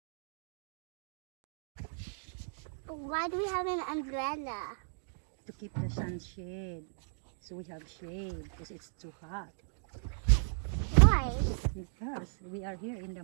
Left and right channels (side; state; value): left; silent; digital silence